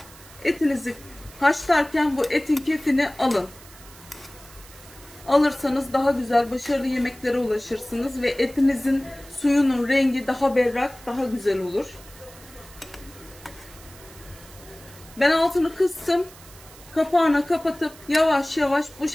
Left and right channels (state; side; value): noise; right; hiss, 21 dB below the sound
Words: etinizi haşlarken bu etin kefini alın. Alırsanız daha güzel, başarılı yemeklere ulaşırsınız ve etinizin suyunun rengi daha berrak, daha güzel olur. Ben altını kıstım. Kapağını kapatıp yavaş yavaş bu